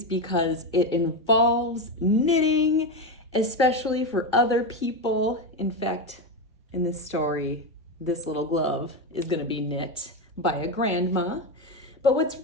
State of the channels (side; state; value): both; normal; correlation 0.13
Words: because it involves knitting, especially for other people. In fact, in this story, this little glove is going to be knit by a grandma. But what's